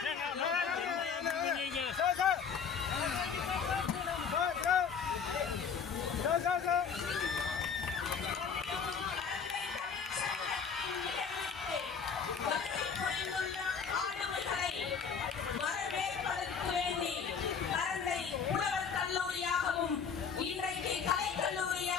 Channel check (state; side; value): quieter; right; 6.3 dB